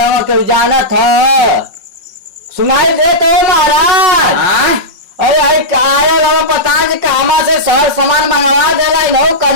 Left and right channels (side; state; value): left; late; 5.6 ms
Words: हो क्यों जाना था सुनाई दे तो महाराज अरे आया लगा पता कि कहाँ से शहर सामान मंगवा देला इन्हों